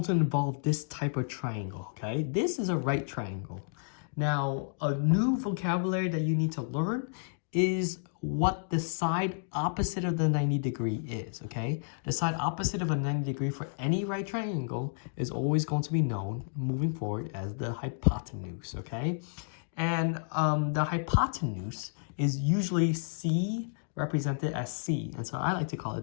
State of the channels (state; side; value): silent; right; digital silence